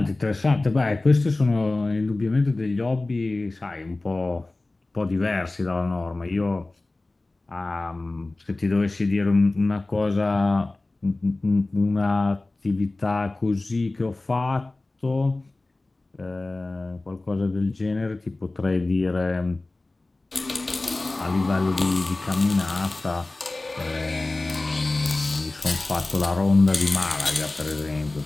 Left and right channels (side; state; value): right; quieter; 3.0 dB